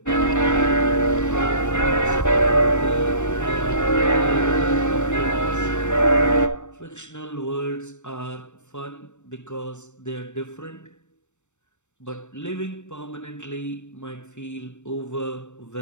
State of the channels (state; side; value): late; right; 0.84 ms